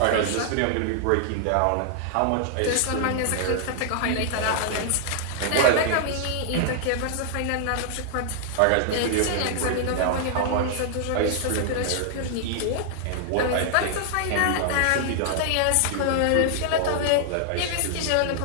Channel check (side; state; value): both; different; correlation -0.01